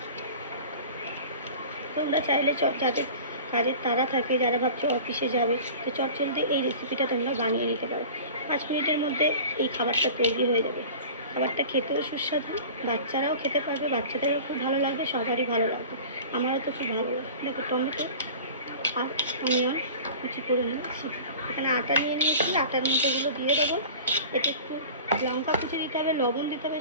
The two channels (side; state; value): both; inverted; correlation -0.39